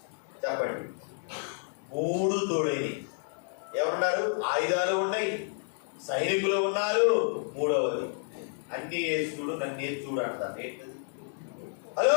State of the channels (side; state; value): right; silent; 58 dB below the other